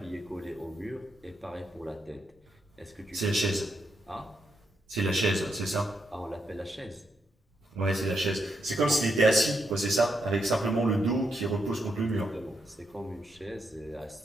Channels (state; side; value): normal; both; correlation 0.81